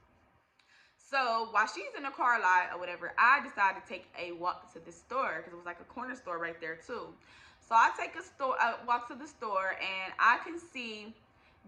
So while she's in the car lot or whatever, I decided to take a walk to the store, because it was like a corner store right there too. So I take a walk to the store, and I can see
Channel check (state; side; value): identical; both; correlation 1.00